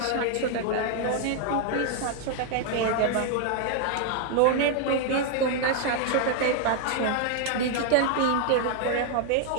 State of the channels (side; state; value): both; different; correlation 0.00